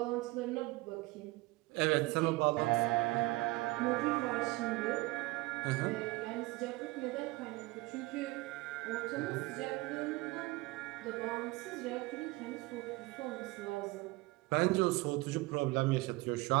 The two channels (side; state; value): left; quieter; 21.5 dB